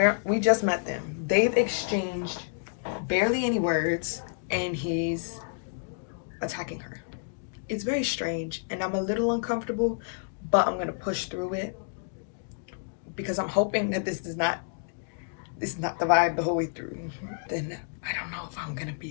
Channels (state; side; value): silent; right; digital silence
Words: we just met them. They've exchanged barely any words, and he's attacking her. It's very strange, and I'm a little uncomfortable, but I'm gonna push through it because I'm hoping that this is not the vibe the whole way through. Then I don't know if I'm gonna